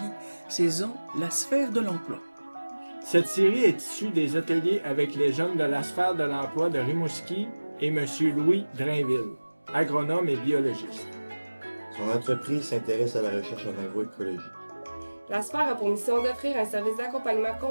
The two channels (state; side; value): inverted; both; correlation -1.00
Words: saison La sphère de l'emploi ». Cette série est issue des ateliers avec les jeunes de la sphère de l'emploi de Rimouski et M. Louis Drainville, agronome et biologiste. Son entreprise s'intéresse à la recherche en agroécologie. La sphère a pour mission d'offrir un service d'accompagnement